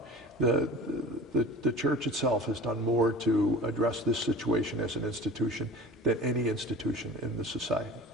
The church itself has done more to address this situation as an institution than any institution in the society.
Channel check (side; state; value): both; normal; correlation 0.38